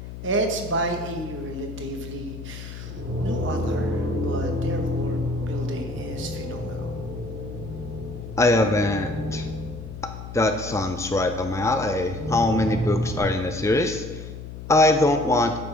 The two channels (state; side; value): noise; left; hum, 11 dB below the sound